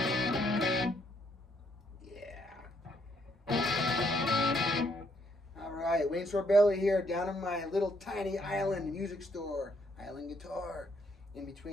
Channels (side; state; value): both; normal; correlation 0.72